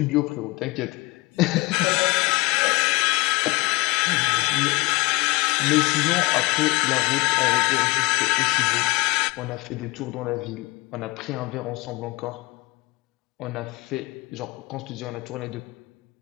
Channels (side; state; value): right; quieter; 23.7 dB